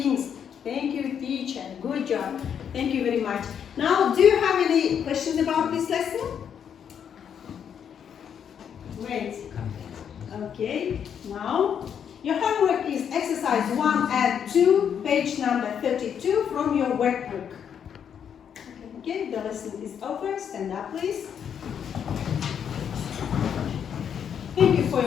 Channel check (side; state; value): right; quieter; 8.2 dB